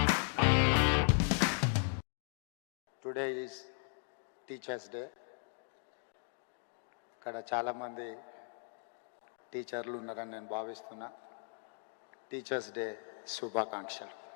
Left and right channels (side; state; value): right; silent; 53 dB below the other